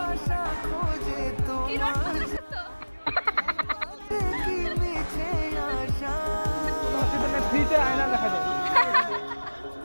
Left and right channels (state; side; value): inverted; both; correlation -1.00